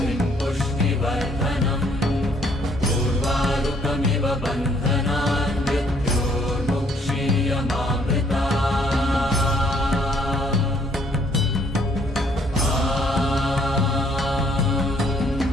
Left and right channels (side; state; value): both; normal; correlation 0.66